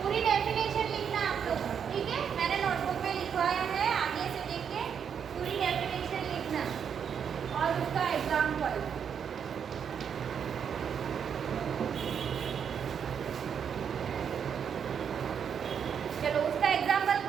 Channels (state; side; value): quieter; left; 7.5 dB